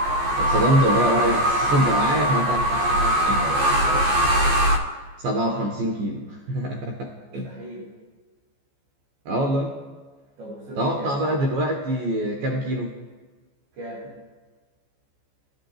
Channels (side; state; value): left; late; 14 ms